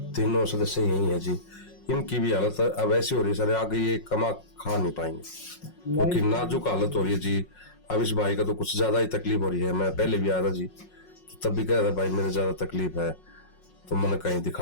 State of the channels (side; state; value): right; late; 5.5 ms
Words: तीनों सदस्य यही है जी। इनकी भी हालत अब ऐसी हो रही है सर, आगे ये कमा खा नहीं पाएंगे क्योंकि नाजुक हालत हो रही है जी। अब इस भाई का तो कुछ ज्यादा ही तकलीफ हो रही है। मैं पहले भी आया था जी, तो तब भी कह रहा भाई मेरे ज्यादा तकलीफ है, तो मैंने कहीं